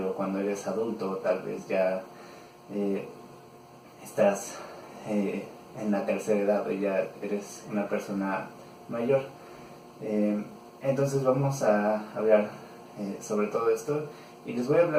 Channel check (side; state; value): both; identical; correlation 1.00